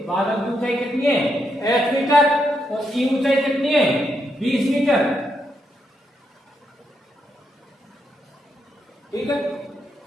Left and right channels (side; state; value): both; normal; correlation 0.80